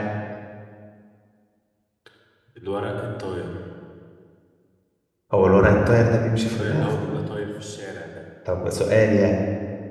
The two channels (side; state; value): both; identical; correlation 1.00